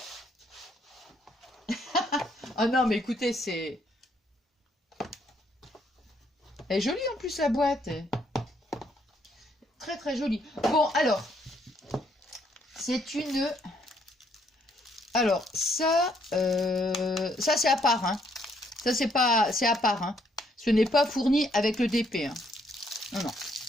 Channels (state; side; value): normal; both; correlation 0.70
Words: Oh non, mais écoutez, c'est... Elle est jolie en plus, la boîte. Très très jolie. Bon, alors, c'est une... Alors, ça c'est à part, hein. Ça, c'est à part, hein. Ce n'est pas fourni avec le DP, hein. Non, non.